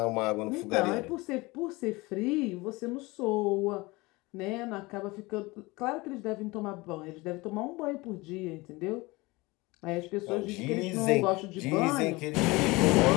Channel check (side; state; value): right; quieter; 22.9 dB